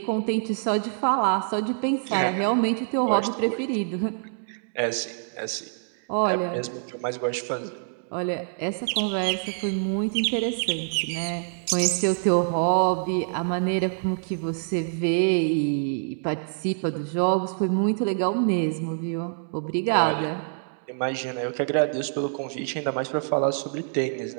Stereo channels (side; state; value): left; silent; digital silence